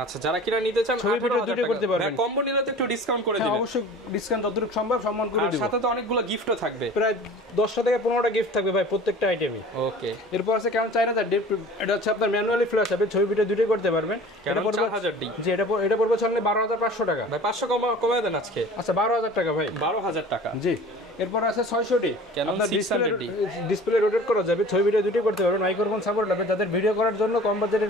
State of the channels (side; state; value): both; normal; correlation 0.43